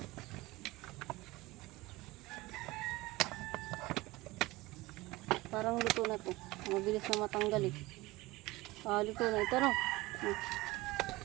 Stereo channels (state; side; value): quieter; left; 20.1 dB